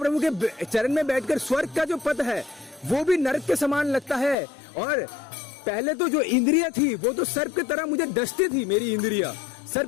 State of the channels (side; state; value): right; drops out; at 4.4 s